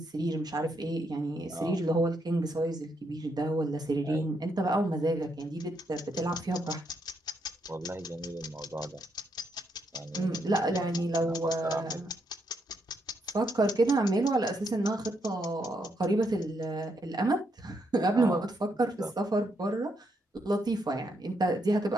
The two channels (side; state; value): both; normal; correlation 0.77